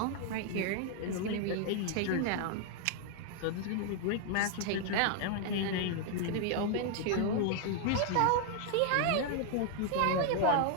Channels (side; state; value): both; different; correlation 0.00